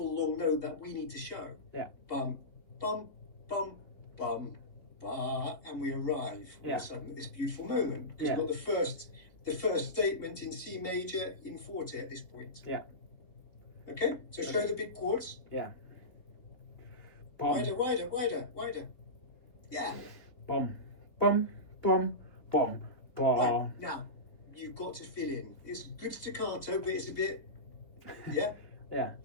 long note that we need to show. Yeah. Bum, bum, bum, bum, ba, and we arrive all of a sudden at this beautiful moment. Because we've got the first statement in C major in forte at this point. Yeah. Okay. So show the big chords. Yeah. Wider, wider, wider, wider. Yeah. Bum, bum, bum, bum, bum. Right, now, you've got to fill in. It's good staccato, but it's a bit, yeah? Yeah.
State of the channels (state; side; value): late; right; 3.3 ms